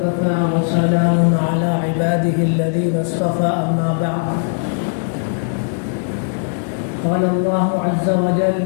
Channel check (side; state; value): right; silent; 67 dB below the other